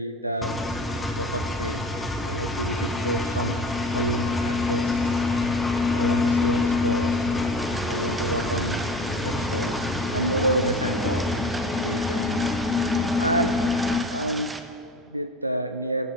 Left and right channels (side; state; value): both; normal; correlation 0.35